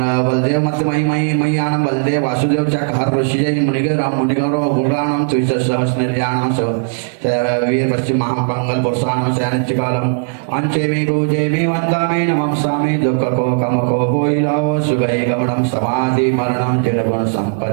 बलदेव मत मही मय्यानं बलदेव वासुदेव चक हर ऋषिजय मुनिगर मुनिगौरव गुणानां त्रिसहस्रनिर्याणां स वीर पश्चिम महापंगल वर्षाणां स्यानिच्चिकालम् अंचेमि पूजेमि वन्दामि नमस्सामि दुःखको कमको भोइलाओ सुगै गमनं समाधि मरणं तिरगुण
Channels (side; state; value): left; silent; digital silence